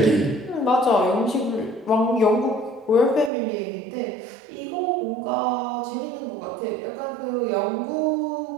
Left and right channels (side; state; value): left; drops out; at 3.3 s